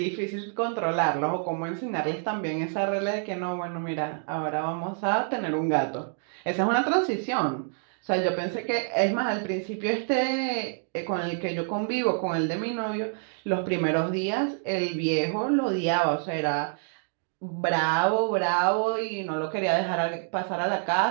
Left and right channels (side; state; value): left; silent; 60 dB below the other